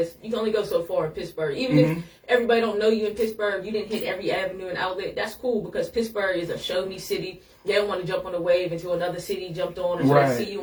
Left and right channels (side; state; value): both; identical; correlation 1.00